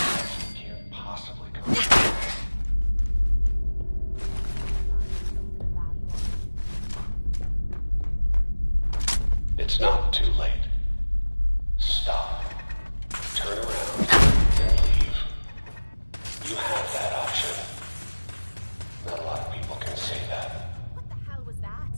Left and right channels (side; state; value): both; inverted; correlation -1.00